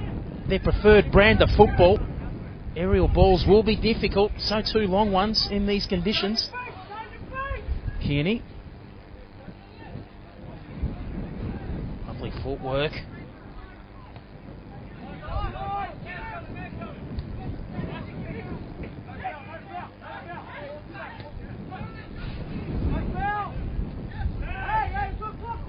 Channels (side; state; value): both; identical; correlation 1.00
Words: their preferred brand of football. Aerial balls will be difficult, so too long ones in these conditions. Kearney. Lovely footwork.